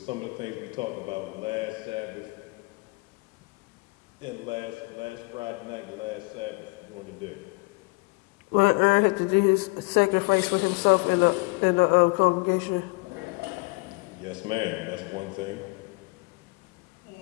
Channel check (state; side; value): quieter; right; 27.8 dB